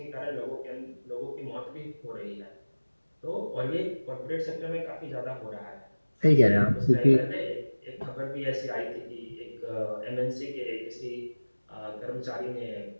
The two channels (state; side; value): inverted; both; correlation -1.00